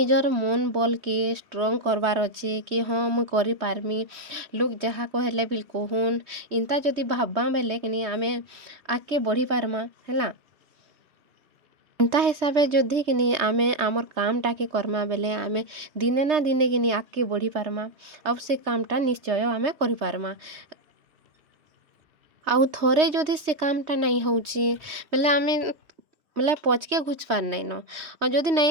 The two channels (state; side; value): late; left; 3.5 ms